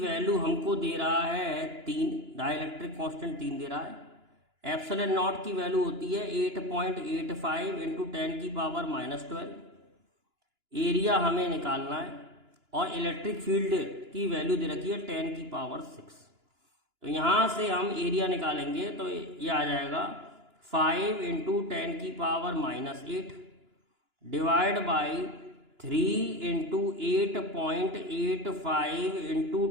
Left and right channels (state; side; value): late; left; 2.9 ms